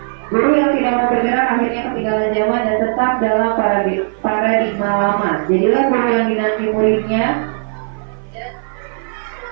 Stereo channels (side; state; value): left; silent; 57 dB below the other